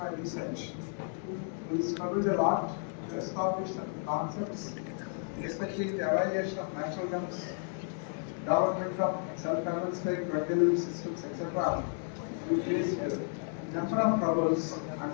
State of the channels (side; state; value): right; silent; 56 dB below the other